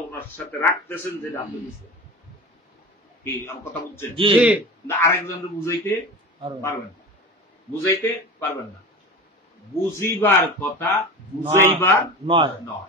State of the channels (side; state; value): both; normal; correlation 0.31